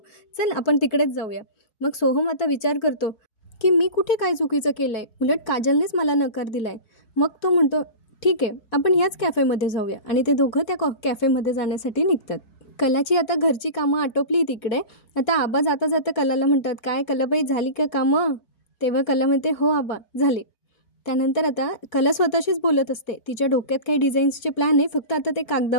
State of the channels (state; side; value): late; right; 4.5 ms